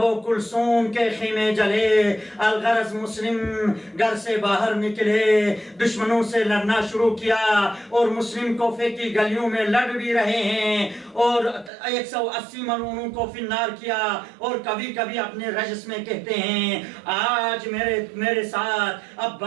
و کلثوم کے خیمے جلے۔ الغرض مسلم گھر سے باہر نکلے، دشمنوں سے لڑنا شروع کیا اور مسلم کوفے کی گلیوں میں لڑ بھی رہے ہیں اور 180 ملعونوں کو فنار کیا، اور کبھی کبھی اپنے رجس میں کہتے ہیں، آج میرے ساتھ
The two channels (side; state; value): left; drops out; at 11.7 s